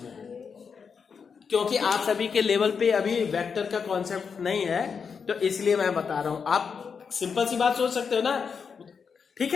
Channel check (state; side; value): quieter; right; 6.0 dB